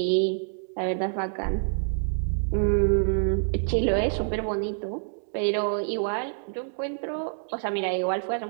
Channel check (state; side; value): silent; left; digital silence